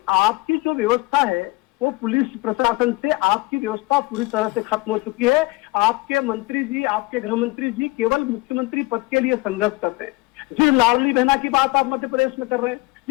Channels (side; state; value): right; quieter; 22.7 dB